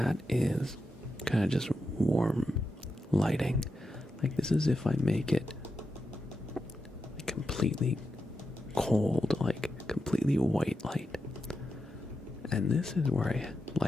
is kind of just warm lighting. Like this is if I make it completely cold, like completely white light. And this is where I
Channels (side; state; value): both; normal; correlation 0.88